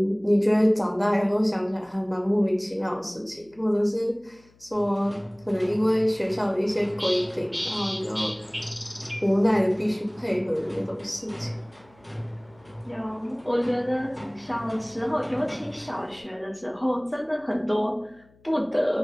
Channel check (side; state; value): left; noise; hum, 30 dB below the sound